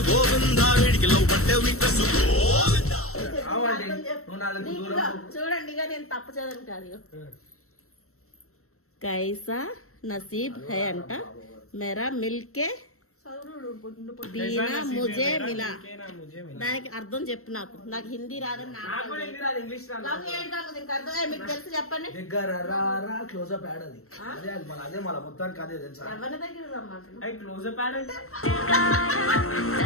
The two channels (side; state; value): right; late; 0.63 ms